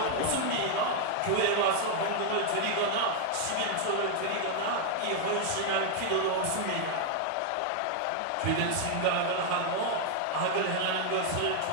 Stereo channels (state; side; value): different; both; correlation 0.00